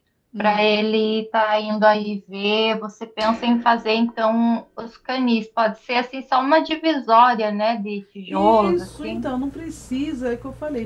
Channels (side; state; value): both; identical; correlation 1.00